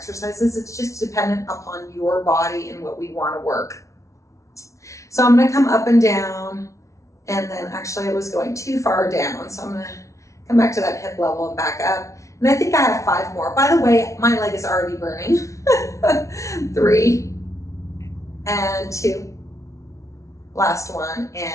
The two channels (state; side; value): late; right; 0.14 ms